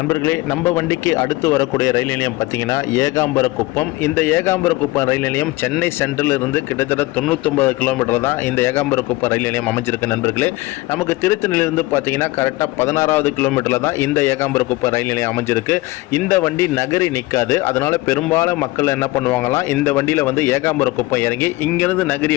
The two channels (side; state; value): right; quieter; 20.1 dB